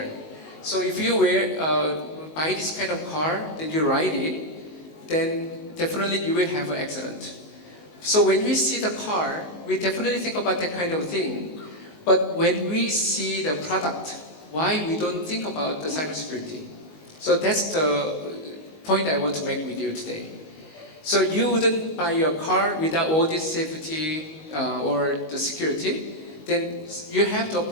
So if you wear buy this kind of car, then you ride it, then definitely you will have an accident. So when we see the car, we definitely think about that kind of thing. But when we see the product, why we don't think about the cybersecurity? So that's the point I want to make with you today. So you wouldn't buy your car without all this safety or the security, then you have to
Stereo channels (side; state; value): right; late; 19 ms